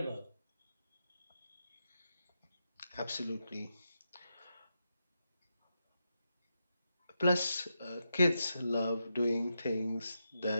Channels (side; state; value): both; inverted; correlation -0.86